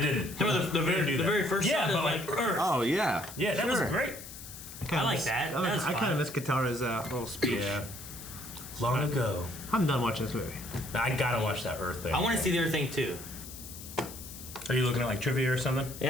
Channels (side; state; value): left; noise; hiss, 13 dB below the sound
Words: didn't. Remember the very first shot of like Earth. Oh yeah. Yeah, that was great. I like that. I kind of miss Katara's little speech. Yeah. Long ago. I'm done watching this movie. I gotta watch that Earth thing. I want to see the other thing too. Are you looking at like trivia or something?